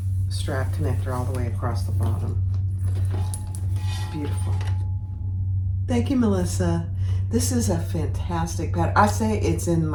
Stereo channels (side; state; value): both; identical; correlation 1.00